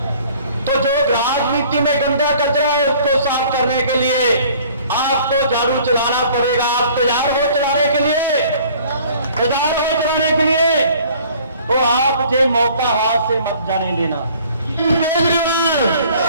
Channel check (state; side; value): inverted; both; correlation -0.53